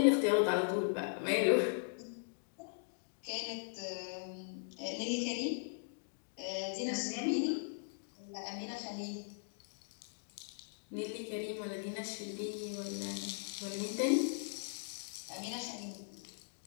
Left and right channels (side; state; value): right; silent; digital silence